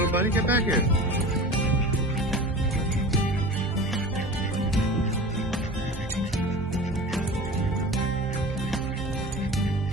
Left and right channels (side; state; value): both; normal; correlation 0.36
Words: buddy. Get back here.